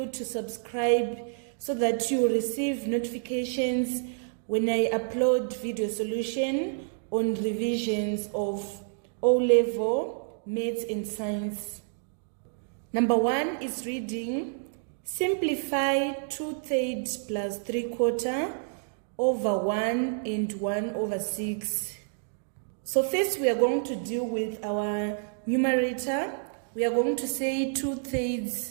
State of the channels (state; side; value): silent; left; digital silence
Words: to subscribe so that you receive notifications when I upload video solution on revisions of O-level Maths and Science. Number 1 is reading. Simplify 2/3 plus 3/4 over 1 and 1 over 6. So first we are going to deal with our numerator. We are going to say